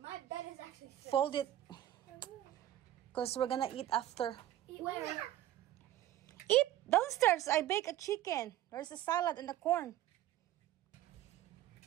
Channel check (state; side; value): quieter; left; 13.3 dB